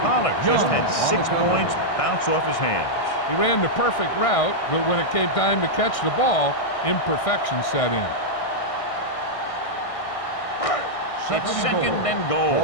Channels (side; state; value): right; late; 1.6 ms